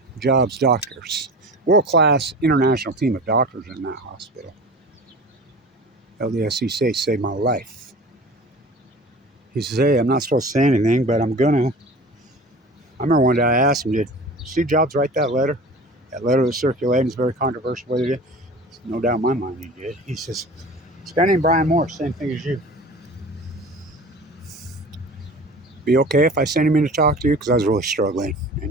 Jobs' doctors. World-class international team of doctors in that hospital. LDSC saved my life. He says, "Hey, I'm not supposed to say anything, but I'm gonna." I remember one day I asked him, "Did Steve Jobs write that letter? That letter was circulating. It's very controversial whether he did." No doubt in my mind he did. He says, "This guy named Brian Morse, same thing as you. Be okay if I send him in to talk to you?" Because I was really struggling.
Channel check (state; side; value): normal; both; correlation 0.39